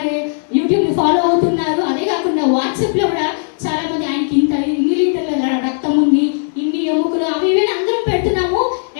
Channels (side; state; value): right; silent; 62 dB below the other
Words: ని ఫాలో అవుతున్నారు. అదే కాకుండా వాట్సాప్ లో కూడా చాలా మంది ఆయనకి ఇన్ని లీటర్ల రక్తం ఉంది, ఇన్ని ఎముకలు, అవి ఇవి అందరం పెడుతున్నాము.